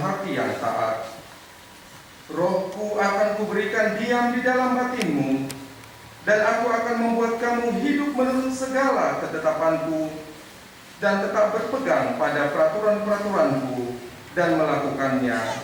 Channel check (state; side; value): identical; both; correlation 1.00